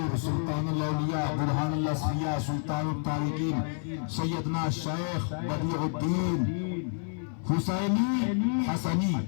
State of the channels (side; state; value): right; silent; 57 dB below the other